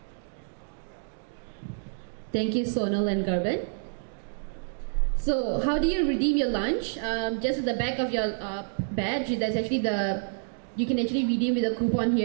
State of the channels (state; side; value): silent; left; digital silence